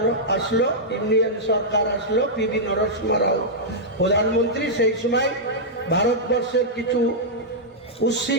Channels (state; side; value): normal; both; correlation -0.08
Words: আসলো, ইন্ডিয়ান সরকার আসলো, পিভি নরসিংহ রাও প্রধানমন্ত্রী, সেই সময় ভারতবর্ষের কিছু